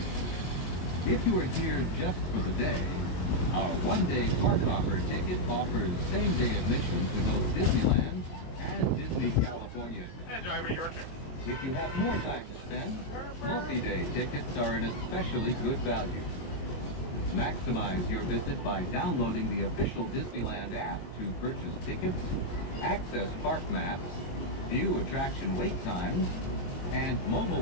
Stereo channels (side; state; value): right; late; 22 ms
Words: If you are here just for the day, our one-day park hopper ticket offers same-day admission to both Disneyland and Disney California. And driver, you are careful. If you have more time to spend, multi-day tickets are an especially good value. Maximize your visit by downloading the official Disneyland app to purchase tickets, access park maps, view attraction wait times, and